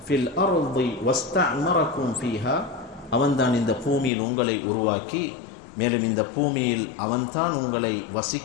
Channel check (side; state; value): right; drops out; at 4.1 s